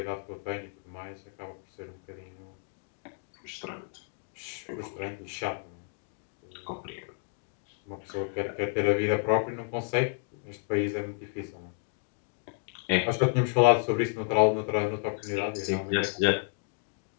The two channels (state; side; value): silent; right; 57 dB below the other